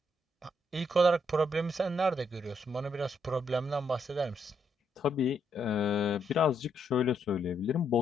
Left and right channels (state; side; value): normal; both; correlation 0.76